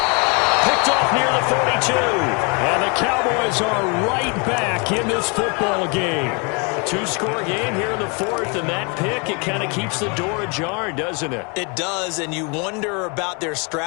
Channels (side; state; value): right; quieter; 33.3 dB